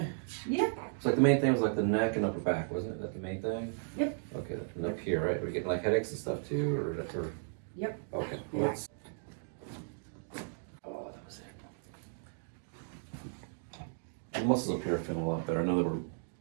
Yeah. It's like the main thing was like the neck and upper back, wasn't it? That the main thing? Yep. Okay, and up here, right? We're getting like headaches and stuff too, or? Yep. Okay. Yeah. Let's. Oh, that was it. The muscles up here are feeling a lot better. I know they were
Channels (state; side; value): silent; left; digital silence